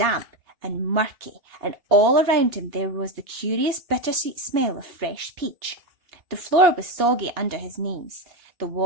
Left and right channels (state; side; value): late; left; 2.8 ms